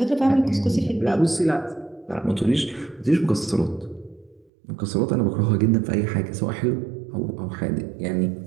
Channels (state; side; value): drops out; left; at 4.5 s